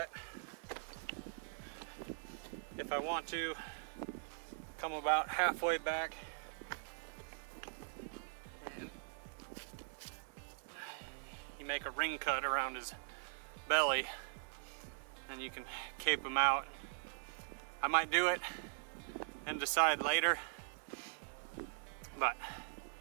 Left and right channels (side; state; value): left; silent; digital silence